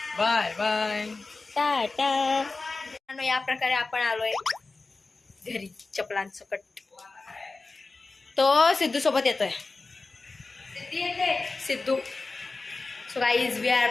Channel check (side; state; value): right; quieter; 3.7 dB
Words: Bye bye. टाटा. या प्रकारे आपण आलोय घरी चपलांसकट. तो सिद्धू सोबत येतोय. Siddhu. So guys we are